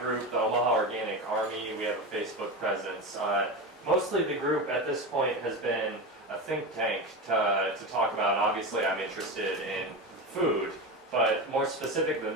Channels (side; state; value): both; normal; correlation 0.21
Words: the Omaha Organic Army. We have a Facebook presence. Mostly the group at this point has been a think tank to talk about. Obviously, I'm interested in food, but more specific than